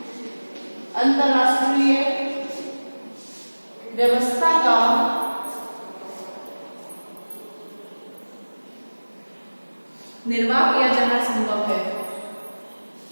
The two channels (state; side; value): inverted; both; correlation -1.00